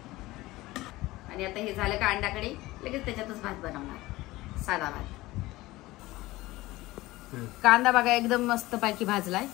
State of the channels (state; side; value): quieter; right; 18.8 dB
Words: आणि आता हे झालं का अंडाकडे लगेच त्याच्यातच भात बनवणार, साधा भात. कांदा बघा एकदम मस्त पैकी भाजलाय